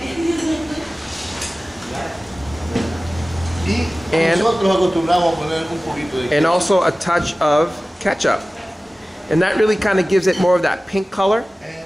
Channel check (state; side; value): normal; both; correlation 0.97